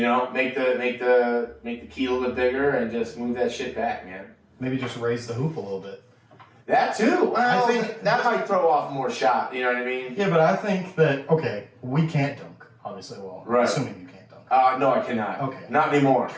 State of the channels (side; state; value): both; identical; correlation 1.00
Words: Make the key a little bit bigger and just move that shit back, man. Maybe just raise the hoop a little bit. That too. Well, I think that might throw off more shot. You know what I mean? Yeah, but I think that we can't dunk. Obviously, right. Assuming you can't dunk. No, I cannot. Okay. Not anymore.